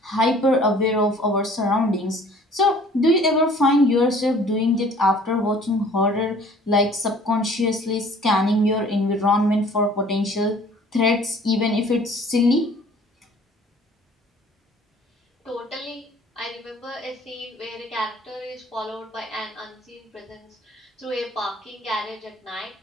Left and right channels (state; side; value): normal; both; correlation 0.52